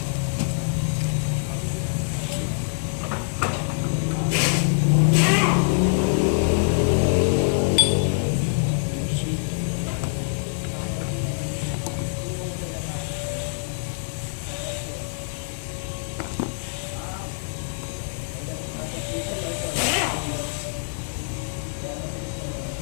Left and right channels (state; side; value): silent; right; digital silence